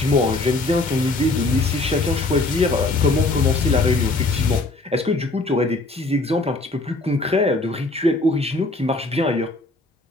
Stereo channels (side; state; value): right; quieter; 3.0 dB